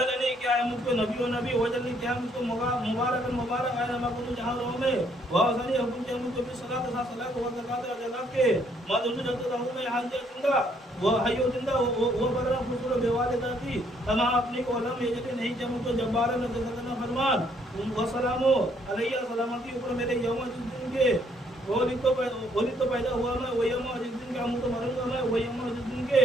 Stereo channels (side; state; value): both; normal; correlation 0.68